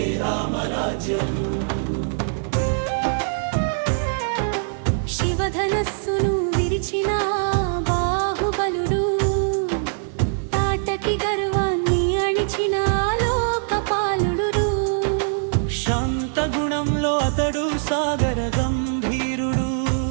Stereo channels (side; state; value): left; silent; digital silence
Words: రామరాజ్యం. శివధనస్సును విరిచిన బాహుబలుడు, తాటకి గర్వాన్ని అణిచిన లోకపాలుడు. శాంత గుణంలో అతడు సాగర గంభీరుడు,